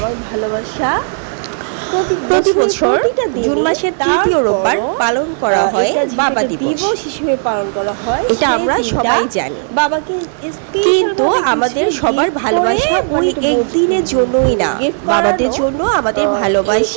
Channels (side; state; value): left; silent; digital silence